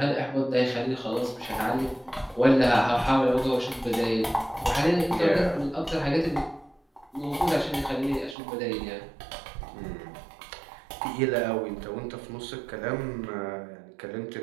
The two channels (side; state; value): left; drops out; at 8.3 s